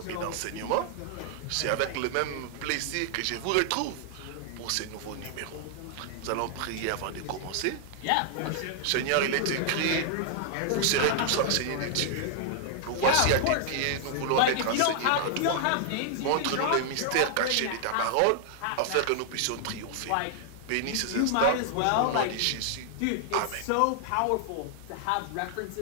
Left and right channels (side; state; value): both; different; correlation 0.00